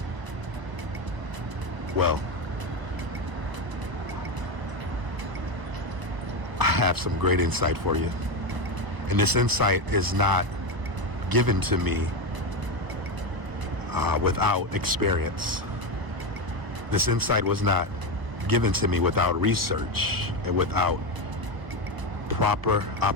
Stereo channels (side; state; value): left; late; 1.0 ms